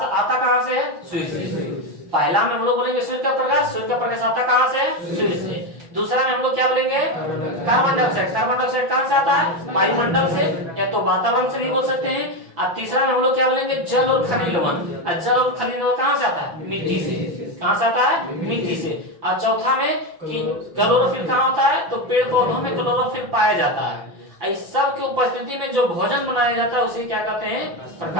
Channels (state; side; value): late; left; 5.9 ms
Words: आता कहां से है, सूर्य से। पहला में हम लोग बोलेंगे सूर्य का प्रकाश, सूर्य का प्रकाश आता कहां से है, सूर्य से। दूसरा में हम लोग क्या बोलेंगे, कार्बन डाइऑक्साइड, कार्बन डाइऑक्साइड कहां से आता है, वायुमंडल से, या तो वातावरण से भी बोल सकते हैं। और तीसरा में हम लोग क्या बोलेंगे, जल और खनिज लवण। जल और खनिज लवण कहां से आता है, मिट्टी से। कहां से आता है, मिट्टी से। और चौथा में कि क्लोरोफिल कहां होता है, तो पेड़ पौधों में क्लोरोफिल पाया जाता है। इस सब की उपस्थिति में जो भोजन बनाया जाता है उसे क्या कहते हैं,